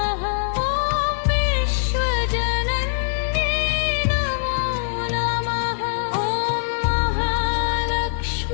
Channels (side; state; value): right; silent; digital silence